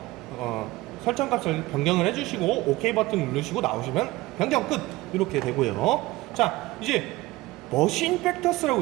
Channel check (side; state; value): left; quieter; 19.3 dB